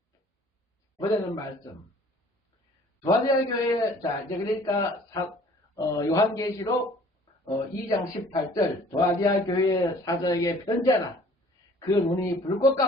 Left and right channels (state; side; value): normal; both; correlation 0.53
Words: 보내는 말씀. 두아디아 교회 자 이제 그러니까 요한계시록 2장 18절 두아디아 교회 사자에게 편지하라. 그 눈이 불꽃